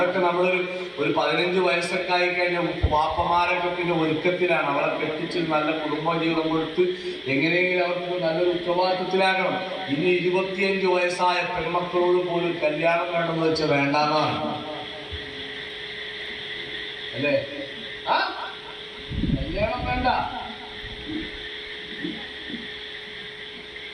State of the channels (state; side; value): identical; both; correlation 1.00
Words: നമ്മളൊരു 15 വയസ്സൊക്കെ ആയി കഴിഞ്ഞാൽ വാപ്പമാരൊക്കെ പിന്നെ ഒരുക്കത്തിലാണ്. അവരെ കെട്ടിച്ച് നല്ല കുടുംബ ജീവിതം കൊടുത്ത് എങ്ങനെയെങ്കിലും അവർക്ക് നല്ലൊരു ഉത്തരവാദിത്വത്തിലാകണം. ഇനി 25 വയസ്സായ പെൺമക്കളോട് പോലും കല്യാണം വേണമെന്ന് വെച്ചാൽ വേണ്ടാന്നാണ് അല്ലേ? കല്യാണം വേണ്ട.